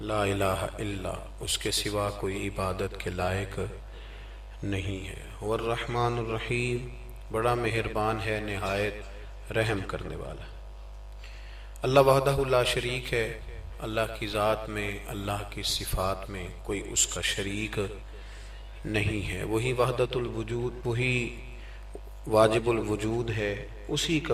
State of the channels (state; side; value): identical; both; correlation 1.00